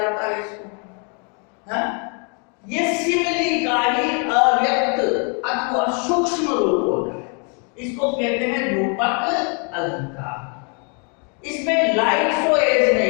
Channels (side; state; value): right; quieter; 37.8 dB